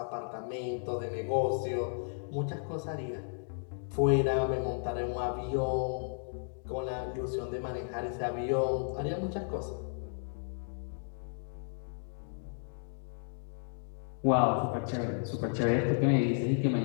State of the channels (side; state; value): right; silent; digital silence